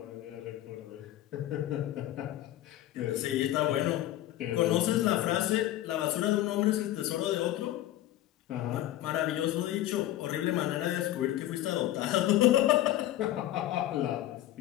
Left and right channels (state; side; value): quieter; right; 13.9 dB